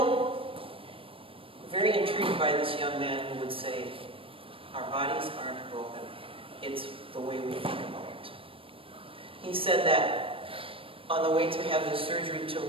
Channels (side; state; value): left; late; 0.26 ms